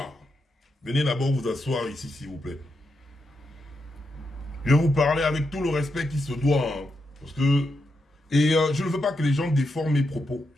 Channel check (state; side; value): normal; both; correlation 0.84